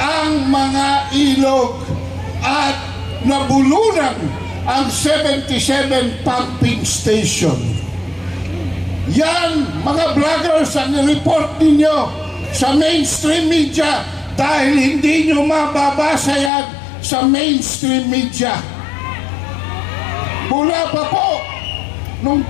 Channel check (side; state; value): right; drops out; at 16.5 s